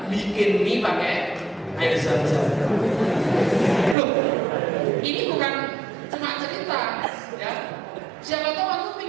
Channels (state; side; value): drops out; left; at 4.0 s